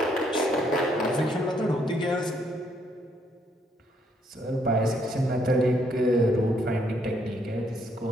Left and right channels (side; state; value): both; normal; correlation 0.71